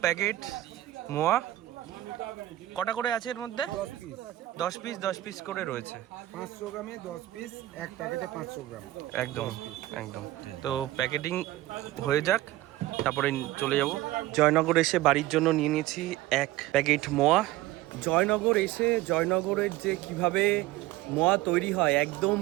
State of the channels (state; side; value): quieter; left; 16.2 dB